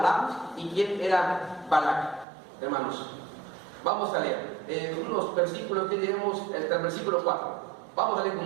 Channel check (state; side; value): drops out; left; at 2.2 s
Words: y quién era Balac, hermanos. Vamos a leer unos versículos que tenemos, el versículo 4. Vamos a leer